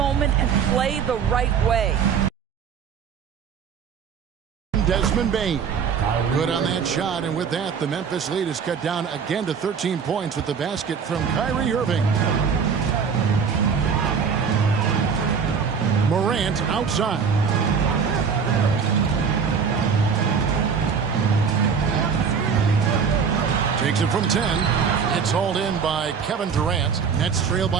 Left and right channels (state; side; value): quieter; left; 6.4 dB